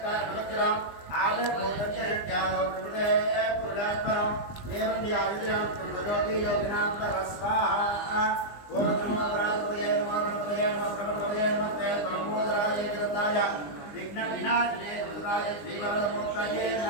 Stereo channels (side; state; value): right; late; 20 ms